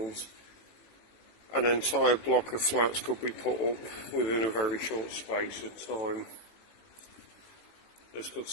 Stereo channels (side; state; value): right; late; 18 ms